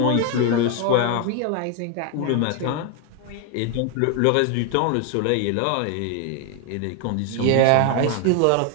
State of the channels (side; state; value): both; different; correlation 0.01